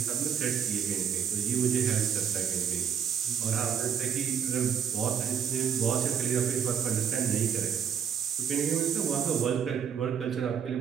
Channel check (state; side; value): quieter; left; 7.8 dB